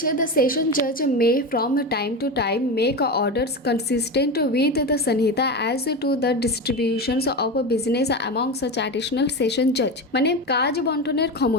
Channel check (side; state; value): both; normal; correlation 0.21